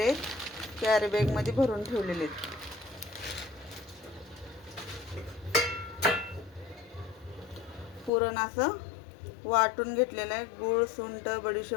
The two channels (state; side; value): drops out; right; at 8.1 s